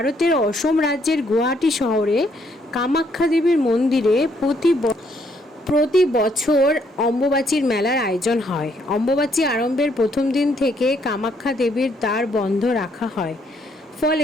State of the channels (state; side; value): normal; both; correlation 0.70